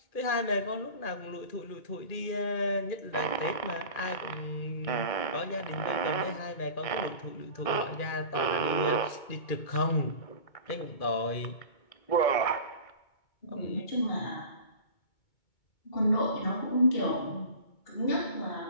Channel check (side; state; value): right; late; 2.2 ms